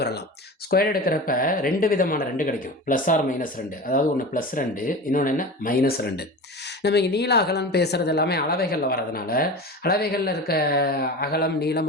வரலாம். ஸ்கொயர் எடுக்கிறப்ப 2 விதமான 2 கிடைக்கும். Plus or minus 2. அதாவது ஒன்று +2, இன்னொன்று என்ன? -2. நம்ம இங்கே நீள அகலம் பேசுகிறது எல்லாமே அளவைகளில் வரதுனால அளவைகளில் இருக்க அகலம் நீளம்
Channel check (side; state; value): both; normal; correlation 0.31